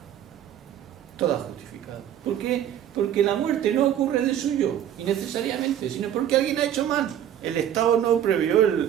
Toda justificada. ¿Por qué? Porque la muerte no ocurre de suyo, innecesariamente, sino porque alguien ha hecho mal. El Estado no previó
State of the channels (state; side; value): quieter; left; 10.5 dB